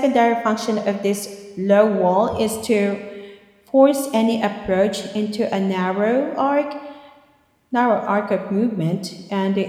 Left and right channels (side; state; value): both; identical; correlation 1.00